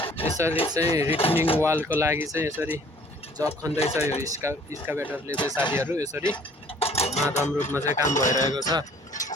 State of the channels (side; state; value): both; normal; correlation 0.55